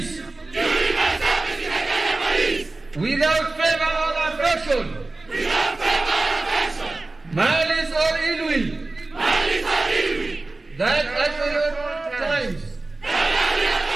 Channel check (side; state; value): left; quieter; 3.2 dB